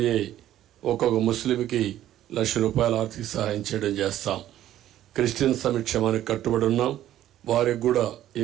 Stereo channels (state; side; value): quieter; left; 12.6 dB